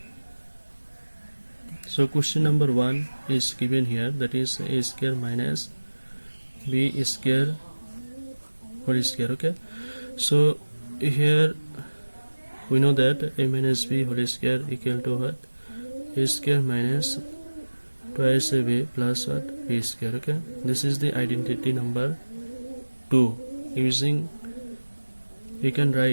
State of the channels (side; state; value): both; inverted; correlation -1.00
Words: So question number 1 is given here, that is a square minus b square whole square. Okay, so here we know that a minus b whole square equal to what? A square minus twice a b plus what? B square. Okay, this is the identity number 2. Using, we can